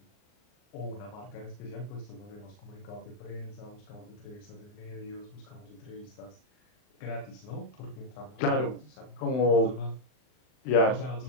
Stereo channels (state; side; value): late; right; 39 ms